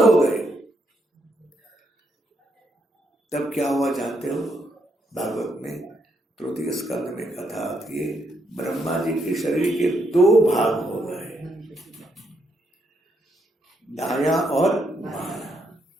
गए। तब क्या हुआ जानते हो? भागवत में 3 स्कंद में कथा आती है, ब्रह्मा जी के शरीर के दो भाग हो गए, दाया और बाया।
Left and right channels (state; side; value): normal; both; correlation 0.77